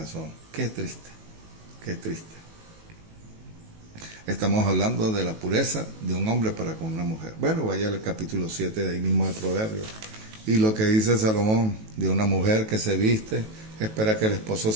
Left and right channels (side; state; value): left; late; 18 ms